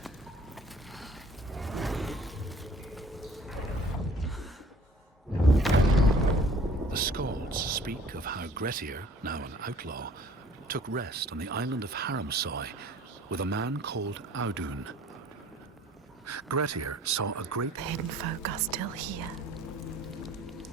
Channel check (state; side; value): normal; both; correlation 0.52